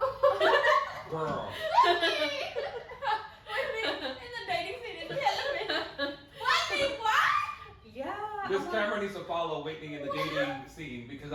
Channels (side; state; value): both; identical; correlation 1.00